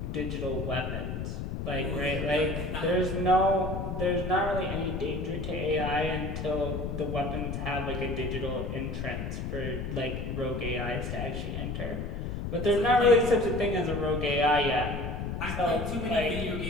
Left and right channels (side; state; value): left; noise; rumble, 4 dB below the sound